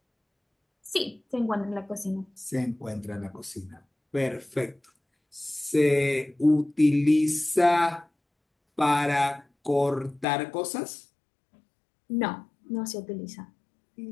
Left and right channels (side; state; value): right; drops out; at 10.2 s